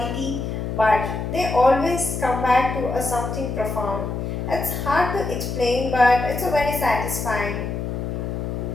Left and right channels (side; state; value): left; noise; hum, 4 dB below the sound